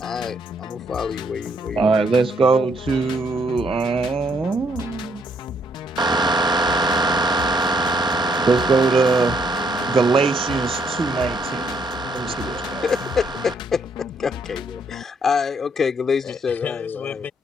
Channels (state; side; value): normal; both; correlation 0.70